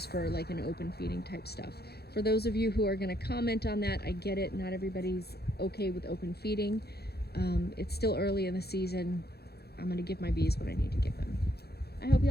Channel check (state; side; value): late; right; 0.46 ms